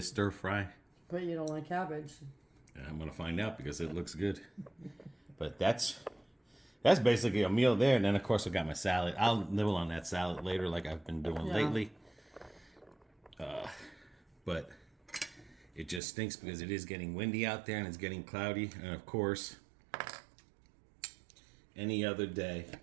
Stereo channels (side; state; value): left; drops out; at 16.0 s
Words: stir fry. But you don't like cabbage. And I'm gonna find out because it looks good. But that's basically a meal there. And then of course I got my salad. I'll nibble on that salad later, like I've been doing lately. But it just stinks because it is getting windy out there and it's getting cloudy. And of course, any other day.